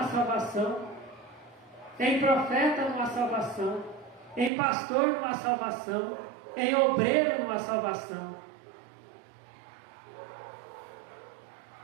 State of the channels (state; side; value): drops out; left; at 4.5 s